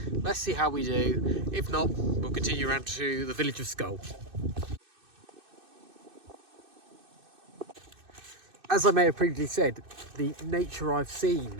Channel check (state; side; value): late; left; 2.6 ms